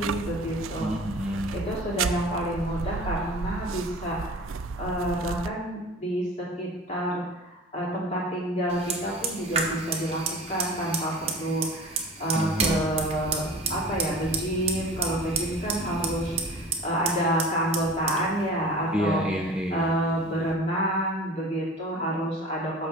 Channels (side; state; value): both; normal; correlation 0.39